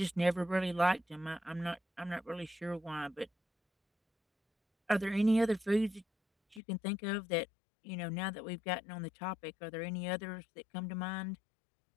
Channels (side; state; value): right; drops out; at 6.6 s